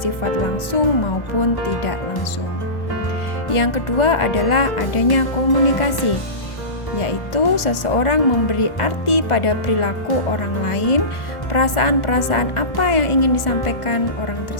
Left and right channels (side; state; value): right; late; 1.4 ms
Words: langsung maupun tidak langsung. Yang kedua adalah adanya komunikasi, yaitu seseorang memberi arti pada perilaku orang lain, perasaan-perasaan apa yang ingin disampaikan orang